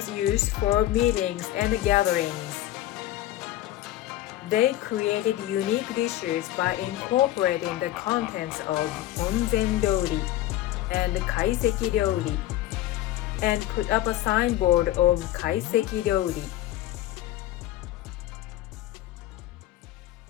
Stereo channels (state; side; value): quieter; right; 14.2 dB